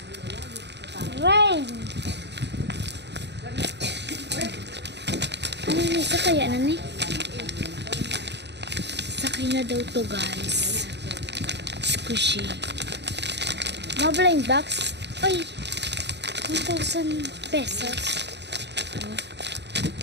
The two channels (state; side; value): late; left; 0.50 ms